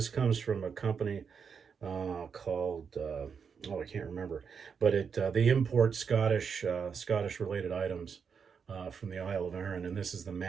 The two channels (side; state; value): left; quieter; 6.4 dB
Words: comes from a company called, I can't remember. But they import Scottish related items from the Isle of Arran, and this is the